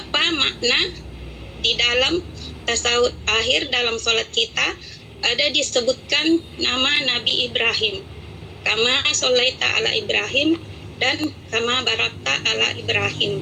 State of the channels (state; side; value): identical; both; correlation 1.00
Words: makna di dalam tasawuf akhir dalam sholat kita ada disebutkan nama Nabi Ibrahim, kama sholaita ala Ibrahim dan kama barakta ala Ibrahim.